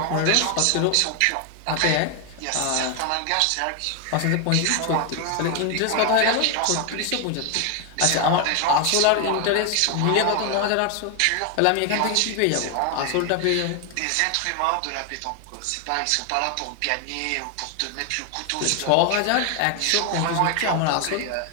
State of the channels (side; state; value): both; different; correlation 0.01